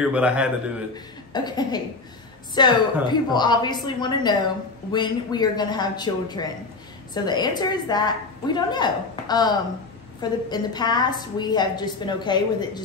but I had to do it. Okay. So, people obviously want to know when we are going to have children. So, the answer is that we don't know. In the past, we have just been okay with it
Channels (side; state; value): right; quieter; 3.8 dB